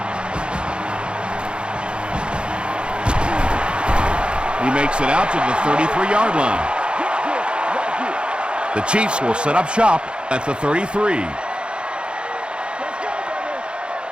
He makes it out to the 33-yard line. The Chiefs will set up shop at the 33.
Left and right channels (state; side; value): late; left; 0.054 ms